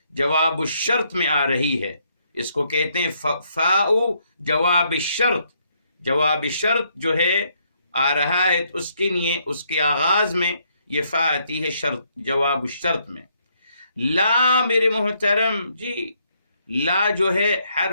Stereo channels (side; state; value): both; inverted; correlation -0.72